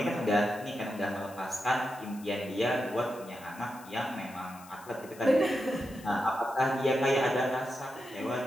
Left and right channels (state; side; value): noise; left; hiss, 21 dB below the sound